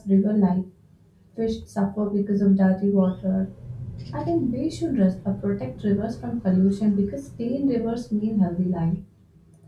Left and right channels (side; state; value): both; identical; correlation 1.00